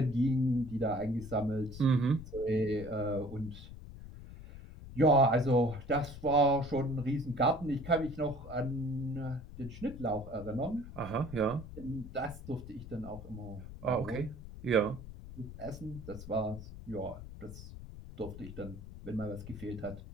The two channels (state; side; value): noise; left; rumble, 13 dB below the sound